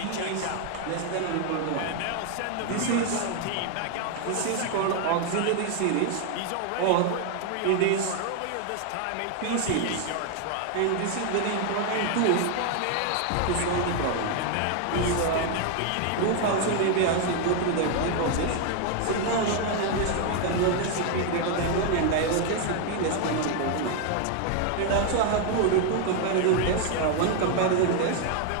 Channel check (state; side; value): different; both; correlation 0.01